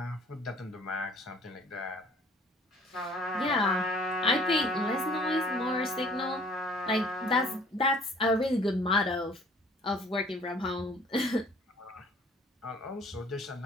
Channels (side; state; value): both; normal; correlation 0.54